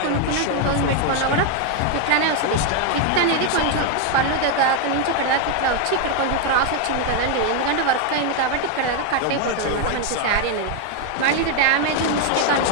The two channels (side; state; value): both; different; correlation 0.01